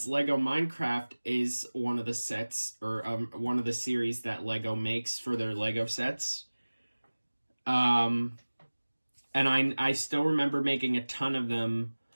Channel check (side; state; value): both; inverted; correlation -1.00